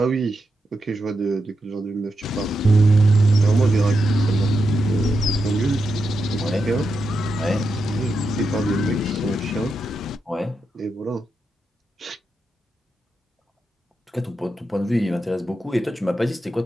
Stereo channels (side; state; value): both; normal; correlation 0.86